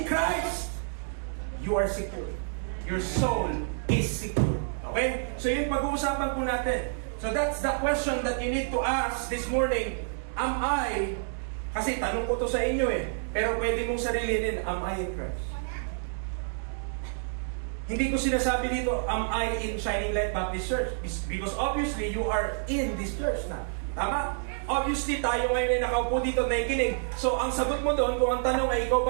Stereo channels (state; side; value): silent; left; digital silence